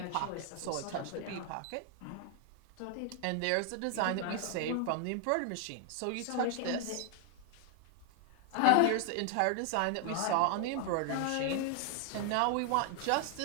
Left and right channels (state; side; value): different; both; correlation 0.00